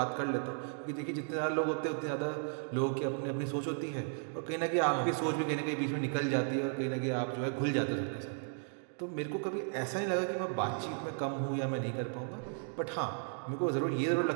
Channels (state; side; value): silent; left; 54 dB below the other